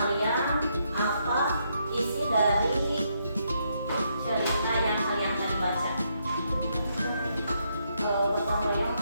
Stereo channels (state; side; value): inverted; both; correlation -0.77